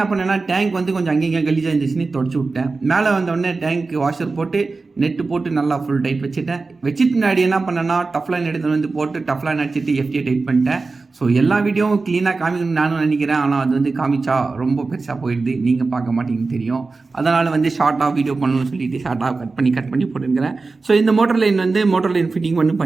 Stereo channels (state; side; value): quieter; left; 3.9 dB